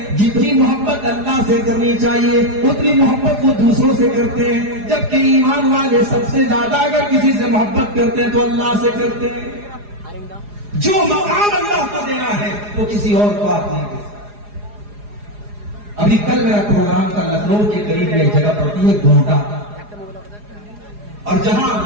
جتنی محبت اللہ سے کرنی چاہیے اتنی محبت وہ دوسروں سے کرتے ہیں، جبکہ ایمان والے سب سے زیادہ اگر کسی سے محبت کرتے ہیں تو اللہ سے کرتے ہیں۔ جو مقام اللہ کو دینا ہے وہ کسی اور کو آپ نہیں دے سکتے۔ ابھی کل میرا پروگرام تھا لکھنؤ کے قریب ایک جگہ پڑتی ہے گھونٹا، اور جہاں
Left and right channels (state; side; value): late; left; 4.8 ms